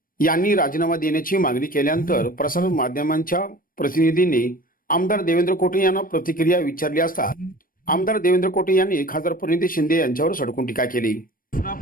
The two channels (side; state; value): right; late; 0.41 ms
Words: यांनी राजीनामा देण्याची मागणी केल्यानंतर प्रसार माध्यमांच्या प्रतिनिधींनी आमदार देवेंद्र कोटे यांना प्रतिक्रिया विचारली असता आमदार देवेंद्र कोटे यांनी खासदार प्रणिती शिंदे यांच्यावर सडकून टीका केली.